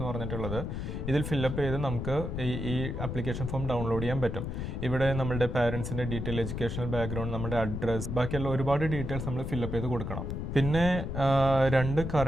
പറഞ്ഞിട്ടുള്ളത്. ഇതിൽ ഫില്ലപ്പ് ചെയ്ത് നമുക്ക് ഈ അപ്ലിക്കേഷൻ ഫോം ഡൗൺലോഡ് ചെയ്യാൻ പറ്റും. ഇവിടെ നമ്മളുടെ പാരൻസിൻ്റെ ഡീറ്റെയിൽ, എഡ്യൂക്കേഷണൽ ബാക്ക്ഗ്രൗണ്ട്, നമ്മുടെ അഡ്രസ്സ്, ബാക്കിയുള്ള ഒരുപാട് ഡീറ്റെയിൽസ് നമ്മൾ ഫില്ലപ്പ് ചെയ്ത് കൊടുക്കണം. പിന്നെ 2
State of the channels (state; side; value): noise; left; rumble, 4 dB below the sound